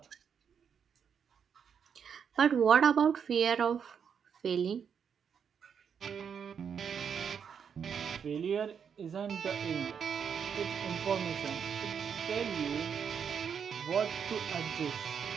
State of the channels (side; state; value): left; quieter; 7.2 dB